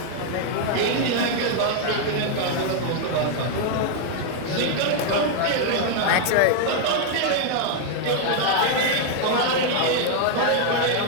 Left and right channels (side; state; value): both; different; correlation 0.00